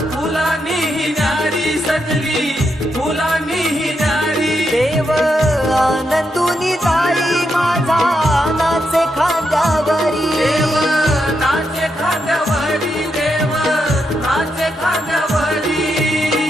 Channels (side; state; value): both; normal; correlation 0.82